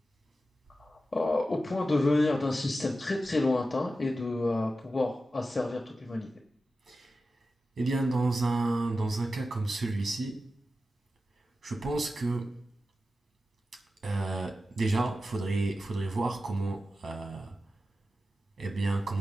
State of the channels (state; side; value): normal; both; correlation 0.92